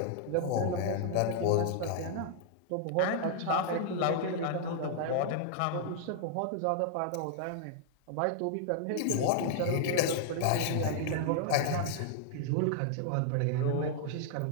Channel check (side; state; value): both; different; correlation -0.01